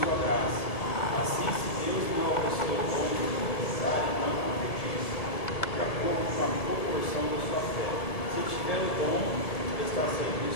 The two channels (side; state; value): right; late; 1.7 ms